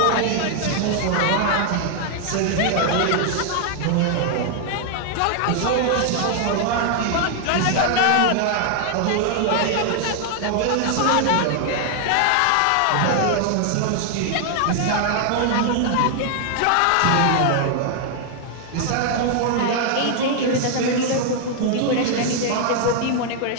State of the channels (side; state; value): both; different; correlation 0.00